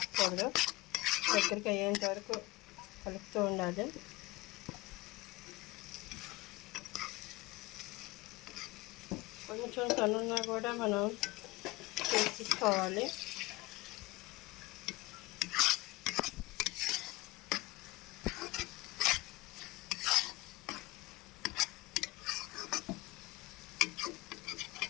దగ్గరికి అయ్యేంత వరకు కలుపుతూ ఉండాలి. కొంచెం సన్నున్నా కూడా మనం తీసుకోవాలి.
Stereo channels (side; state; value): right; quieter; 21.1 dB